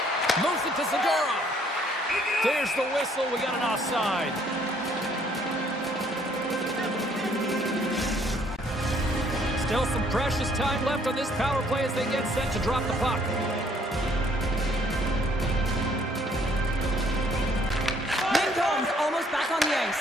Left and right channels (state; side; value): normal; both; correlation 0.64